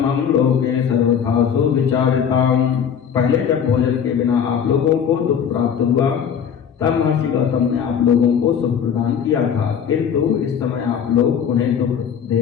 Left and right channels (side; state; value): right; quieter; 7.9 dB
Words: लोके सर्वथा सुविचारिताम्। पहले जब भोजन के बिना आप लोगों को दुख प्राप्त हुआ तब महर्षि गौतम ने आप लोगों को सुख प्रदान किया था, किंतु इस समय आप लोग उन्हें दुख दे